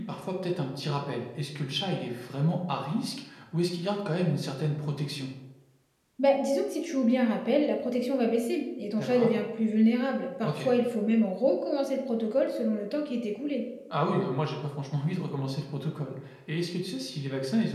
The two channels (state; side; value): identical; both; correlation 1.00